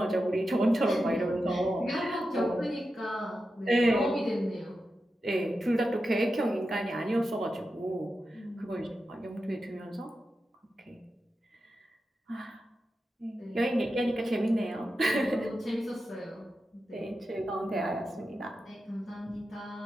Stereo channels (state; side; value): normal; both; correlation 0.90